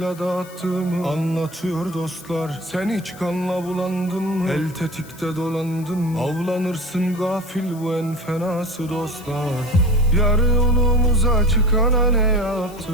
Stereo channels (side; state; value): left; noise; hiss, 21 dB below the sound